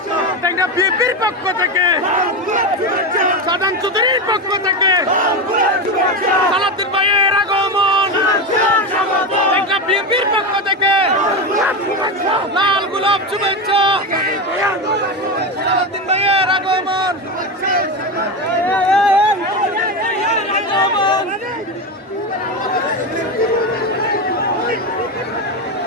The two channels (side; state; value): both; normal; correlation 0.16